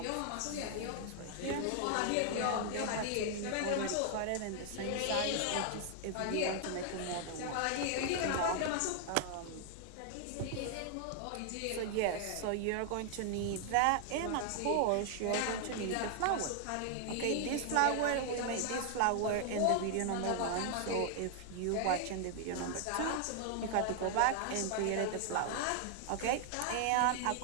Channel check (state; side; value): different; both; correlation 0.00